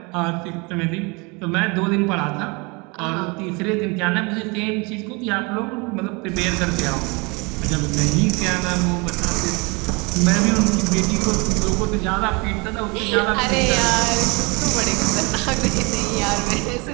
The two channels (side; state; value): left; quieter; 28.5 dB